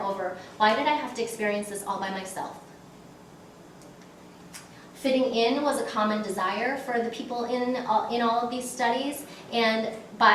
why did I have to experience this all by myself? Fitting in was a common desire for the people in all of these studies, and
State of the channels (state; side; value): identical; both; correlation 1.00